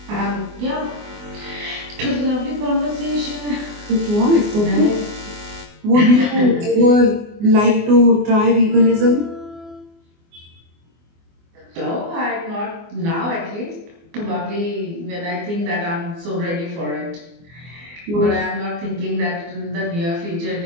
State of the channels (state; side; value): late; left; 24 ms